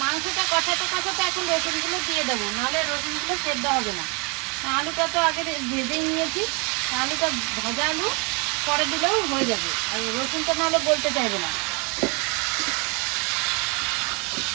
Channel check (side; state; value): left; quieter; 31.8 dB